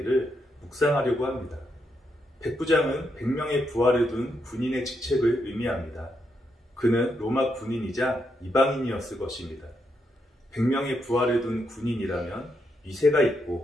묵상하려고 합니다. 백부장은 100명의 부하를 둔 군인의 직책을 의미합니다. 그는 로마 군인이자 이방인이었을 것입니다. 100명의 부하를 둔 군인이라면 위세가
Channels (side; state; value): both; normal; correlation 0.81